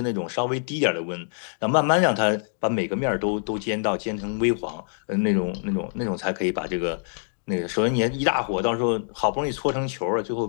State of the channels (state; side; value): silent; right; digital silence